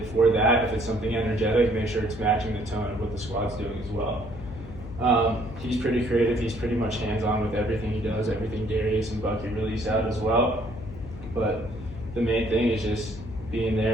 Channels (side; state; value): left; noise; hum, 13 dB below the sound